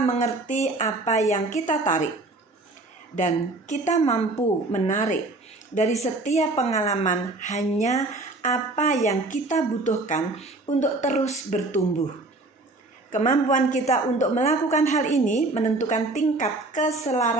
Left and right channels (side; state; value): left; quieter; 3.0 dB